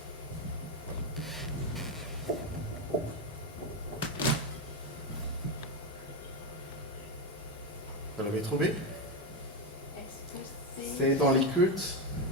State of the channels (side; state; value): both; normal; correlation 0.09